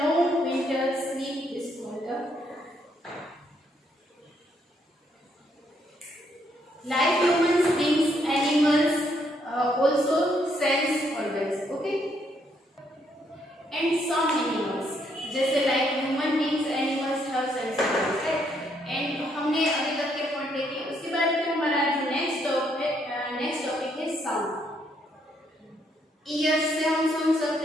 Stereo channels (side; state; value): both; normal; correlation 0.73